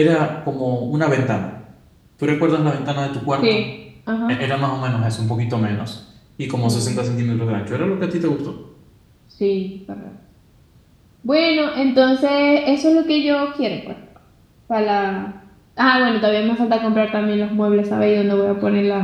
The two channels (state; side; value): identical; both; correlation 1.00